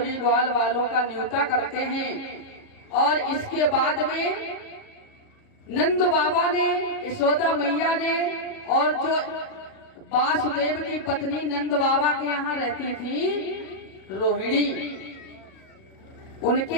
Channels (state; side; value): late; right; 37 ms